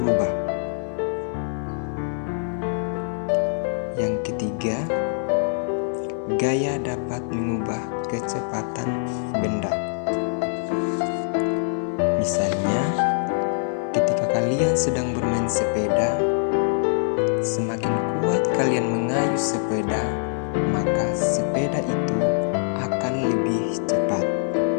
Yang ketiga, gaya dapat mengubah kecepatan benda. Misalnya, ketika kalian sedang bermain sepeda, semakin kuat kalian mengayuh sepeda, maka sepeda itu akan lebih cepat.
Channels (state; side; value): silent; right; digital silence